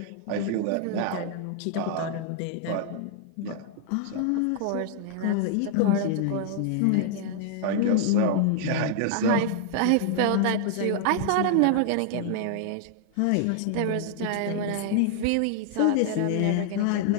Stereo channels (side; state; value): both; different; correlation -0.01